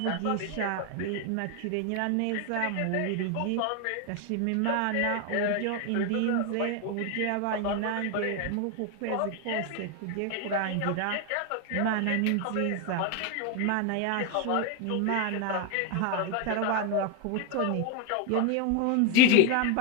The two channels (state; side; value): different; both; correlation 0.01